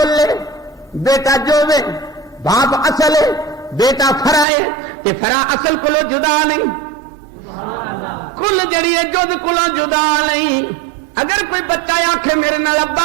لے بیٹا جو وے باپ اصل ہے بیٹا فرا ہے کہ فرا اصل کولو جدا نہیں کل جڑی ہے جد کولو جدا نہیں. اگر کوئی بچہ آکھے میرے نال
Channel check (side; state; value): left; drops out; at 4.5 s